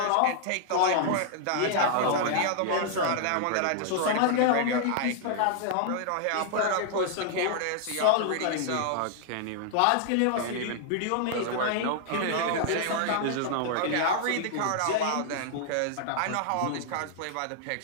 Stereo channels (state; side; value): different; both; correlation 0.00